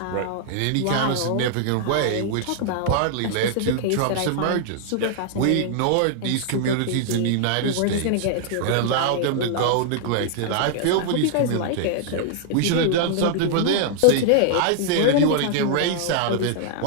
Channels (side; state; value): both; different; correlation -0.01